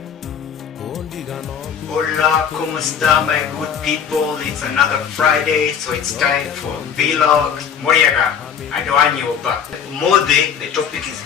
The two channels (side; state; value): right; quieter; 7.6 dB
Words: Hola, ¿cómo está, my good people? It's another Friday, so it's time for vlog. Moyaga, I don't want you back. Mode, the topic is